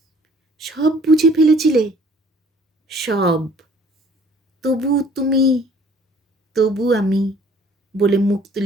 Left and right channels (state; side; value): normal; both; correlation 0.55